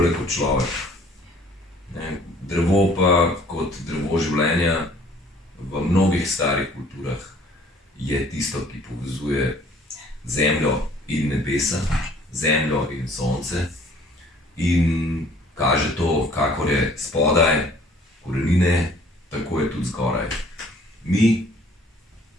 kot človek. Drevo pa kot drevo življenja v mnogih starih kulturah je tisto, ki povezuje zemljo in nebesa, zemljo in sonce in kaže to, kakor je spodaj korenine, tako je tudi zgoraj. Mi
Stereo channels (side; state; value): both; normal; correlation 0.56